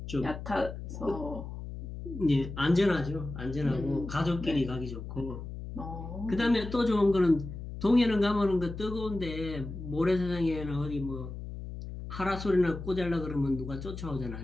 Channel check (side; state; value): left; noise; hum, 9 dB below the sound